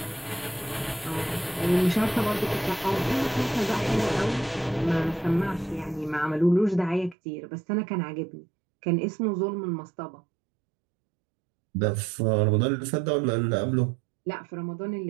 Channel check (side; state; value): left; drops out; at 7.2 s